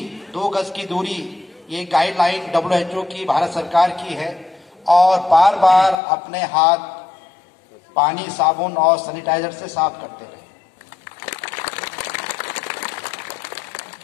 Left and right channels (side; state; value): right; drops out; at 6.0 s